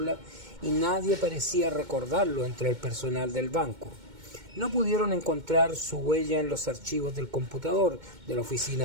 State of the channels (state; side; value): late; left; 2.2 ms